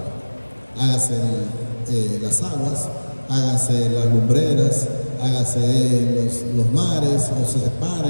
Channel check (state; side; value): inverted; both; correlation -1.00